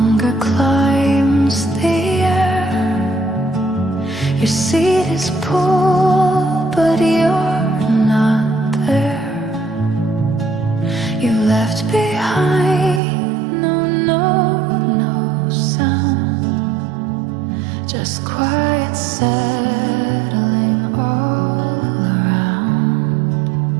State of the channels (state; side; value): drops out; left; at 13.0 s